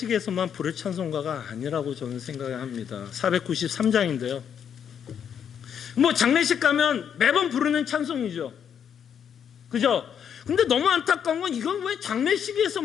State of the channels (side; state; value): right; quieter; 8.2 dB